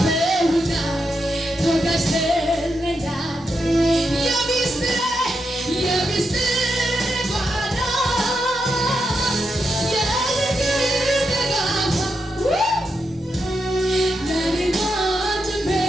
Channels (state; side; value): normal; both; correlation 0.84